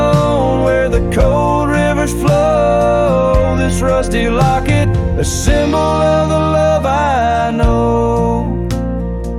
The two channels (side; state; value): both; identical; correlation 1.00